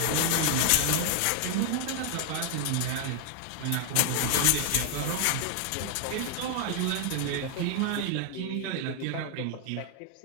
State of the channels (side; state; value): both; different; correlation 0.00